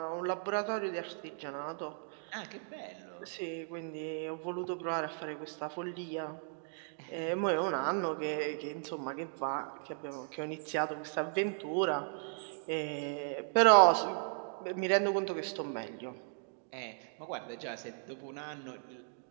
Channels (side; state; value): left; silent; digital silence